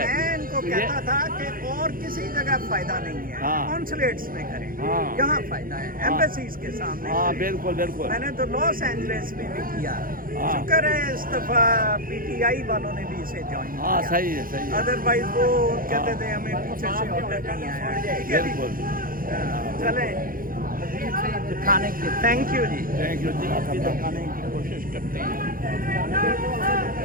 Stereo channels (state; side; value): late; left; 0.41 ms